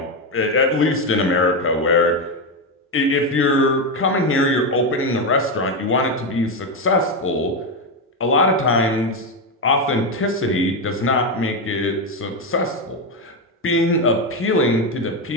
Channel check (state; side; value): normal; both; correlation 0.10